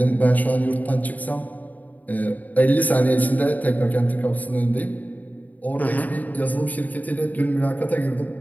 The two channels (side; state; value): right; late; 0.078 ms